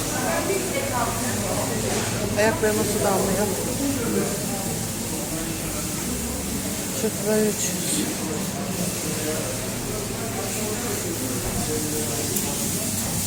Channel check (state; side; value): identical; both; correlation 1.00